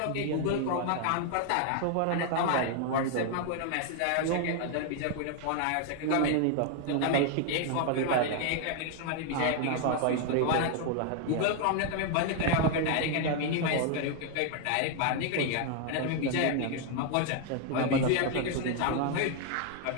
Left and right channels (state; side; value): different; both; correlation 0.00